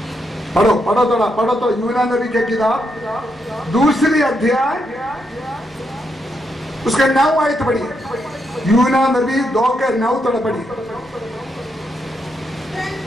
पढ़ो पढ़ो थोड़ा, पढ़ो तो यूना नबी के किताब 2 अध्याय उसके 9 आयत पढ़ी, यूना नबी 2 के 9 थोड़ा पढ़ी।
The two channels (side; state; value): both; normal; correlation 0.80